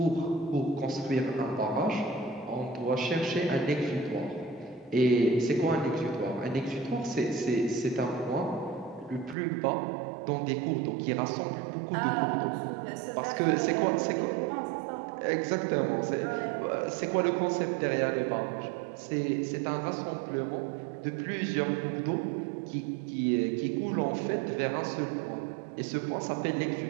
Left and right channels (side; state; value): left; drops out; at 9.3 s